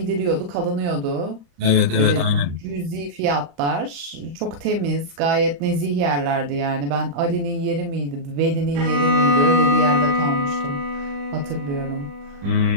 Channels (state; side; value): late; left; 35 ms